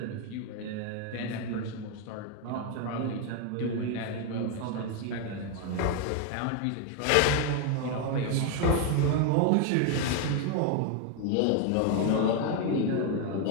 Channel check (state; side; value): different; both; correlation 0.01